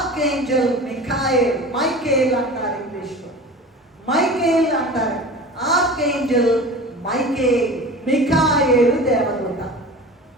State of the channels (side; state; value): both; normal; correlation 0.36